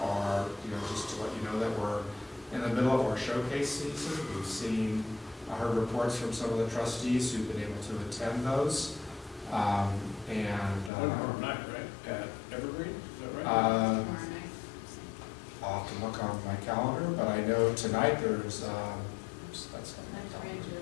are, just to let you know that we're in the middle of our showcase season. We've seen, I heard reports from some of the trustees who've been able to attend those. Tomorrow night, right? At Evergreen, is that right? I'll have to look on my calendar, but I know tonight there's,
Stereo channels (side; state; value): right; drops out; at 10.9 s